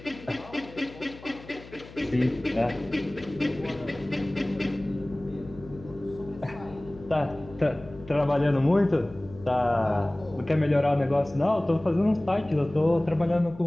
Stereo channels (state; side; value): noise; left; hum, 19 dB below the sound